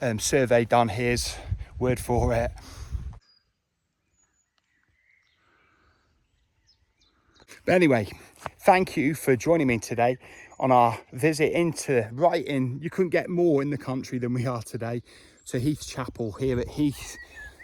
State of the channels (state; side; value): identical; both; correlation 1.00